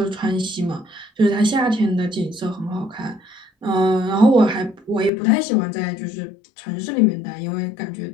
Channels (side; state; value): right; drops out; at 5.1 s